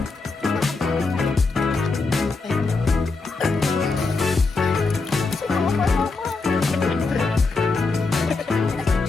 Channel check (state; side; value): quieter; right; 3.9 dB